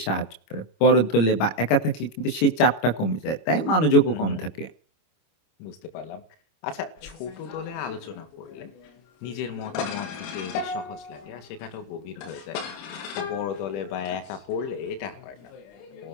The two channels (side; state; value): right; late; 26 ms